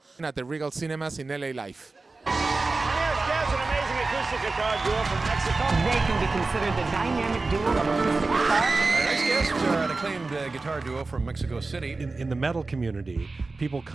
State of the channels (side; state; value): left; quieter; 3.6 dB